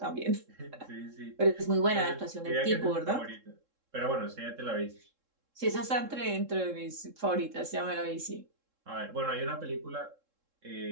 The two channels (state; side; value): late; left; 3.7 ms